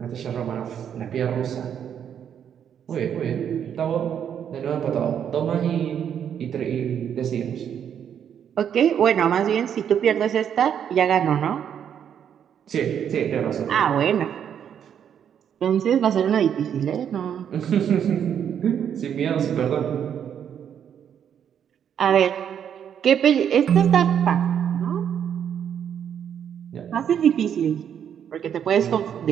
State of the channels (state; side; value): quieter; left; 8.7 dB